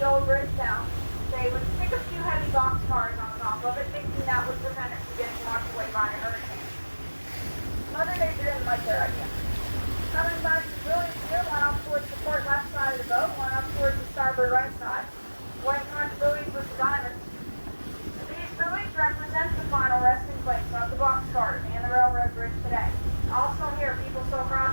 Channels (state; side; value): inverted; both; correlation -1.00